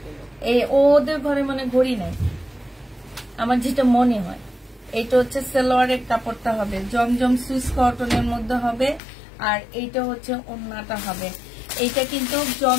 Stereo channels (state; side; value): drops out; right; at 9.0 s